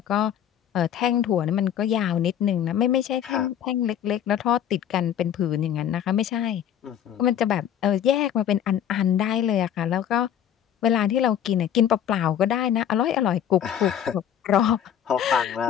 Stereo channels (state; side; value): quieter; right; 9.8 dB